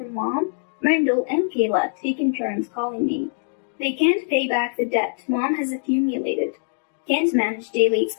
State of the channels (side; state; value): right; silent; digital silence